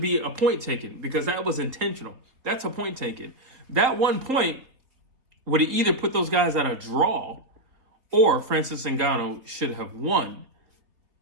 a point taken because that was intentional. That's a point taken. That 1 point would have either put those guys at a draw or Francis Ngannou should have won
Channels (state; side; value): late; left; 3.8 ms